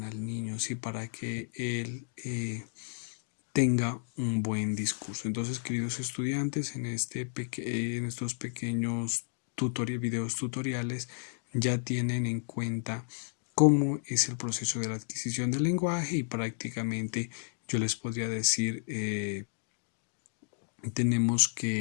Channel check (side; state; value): right; silent; digital silence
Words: al niño, ¿sí? Para que él tenga un buen discurso. Entonces, queridos estudiantes, en estos pequeños videos tutoriales ya tienen en cuenta cómo es el proceso de la adquisición del lenguaje y prácticamente yo les podría decir,